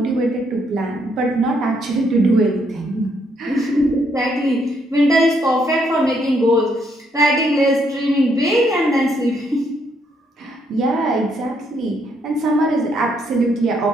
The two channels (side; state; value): both; normal; correlation 0.73